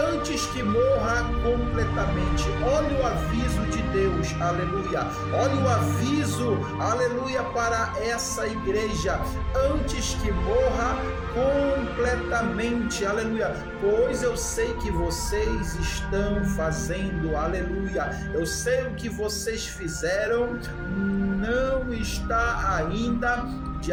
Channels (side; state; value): both; identical; correlation 1.00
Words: antes que morra completamente. Olha o aviso de Deus, aleluia. Olha o aviso, aleluia, para essa igreja, antes que morra completamente, aleluia. Pois eu sei que vocês estão fazendo, aleluia. Eu sei o que vocês fizeram, não está ainda de